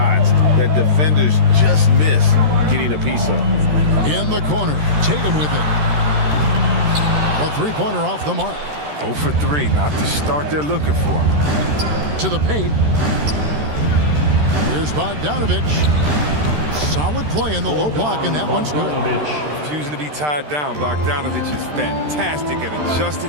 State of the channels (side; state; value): left; late; 13 ms